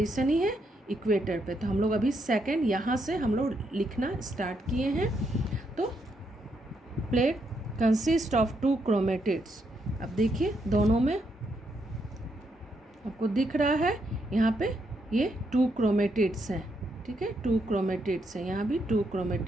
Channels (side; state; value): both; normal; correlation 0.78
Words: ही है इक्वेटर पे। तो हम लोग अभी सेकंड यहाँ से हम लोग लिखना स्टार्ट किए हैं। तो प्लेट कंसिस्ट ऑफ 2 क्रोमेटिड्स। अब देखिए दोनों में आपको दिख रहा है यहाँ पे ये 2 क्रोमेटिड्स हैं, ठीक है, 2 क्रोमेटिड्स हैं, यहाँ भी 2